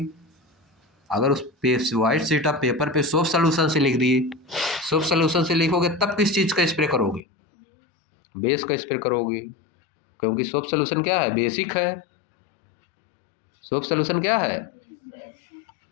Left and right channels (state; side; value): drops out; right; at 7.2 s